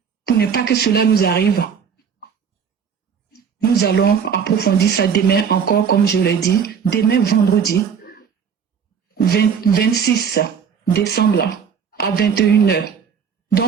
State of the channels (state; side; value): quieter; left; 7.0 dB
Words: pour ne pas que cela nous arrive? Nous allons approfondir ça demain encore, comme je l'ai dit, demain vendredi 26 décembre à 21h.